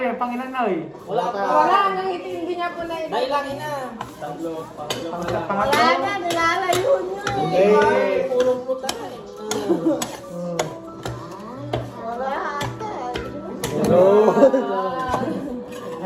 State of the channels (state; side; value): identical; both; correlation 1.00